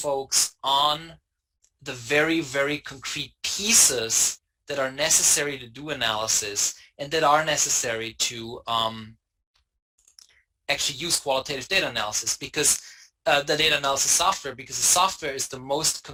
on the very, very concrete pieces that are necessary to do analysis and that are necessary to actually use qualitative data analysis, because the data analysis software, because the software is the most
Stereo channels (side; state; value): both; identical; correlation 1.00